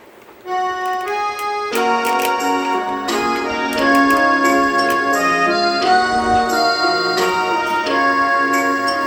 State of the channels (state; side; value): identical; both; correlation 1.00